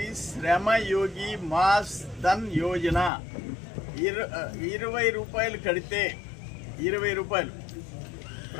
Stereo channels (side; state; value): right; drops out; at 3.1 s